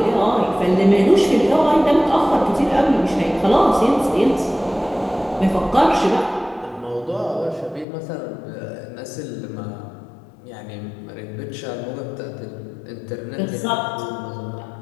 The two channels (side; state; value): right; drops out; at 7.9 s